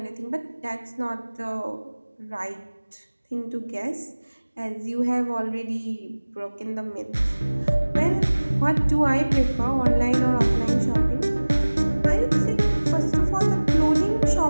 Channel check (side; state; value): both; inverted; correlation -1.00